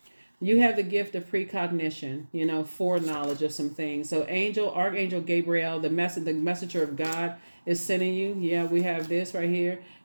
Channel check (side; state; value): both; inverted; correlation -1.00